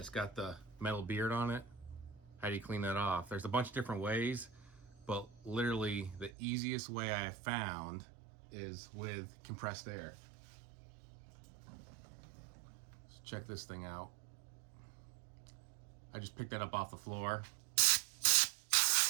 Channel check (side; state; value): left; drops out; at 6.3 s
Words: got the metal beard on it? How do you clean that off? There's a bunch of different ways, but literally the easiest way I have found is with compressed air. So check this thing out. I just picked that up off the floor.